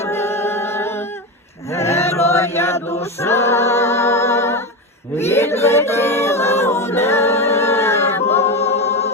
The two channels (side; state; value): both; normal; correlation 0.18